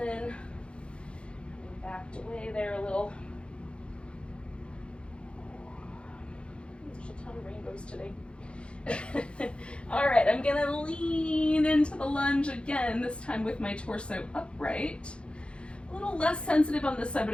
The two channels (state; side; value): late; right; 0.057 ms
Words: Backed away there a little. There's a ton of rainbows today. All right, I'm gonna lean into the lunge again, this time with my torso upright. A little less sensitive on this side,